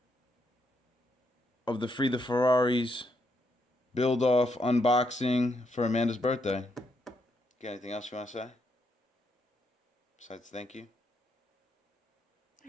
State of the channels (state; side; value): normal; both; correlation 0.78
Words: of the Free the Ferraris build-off unboxing for Amanda's birthday. Got anything else you want to say? Besides thank you?